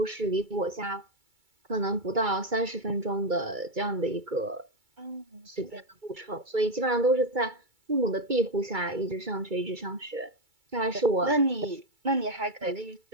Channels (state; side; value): late; left; 2.3 ms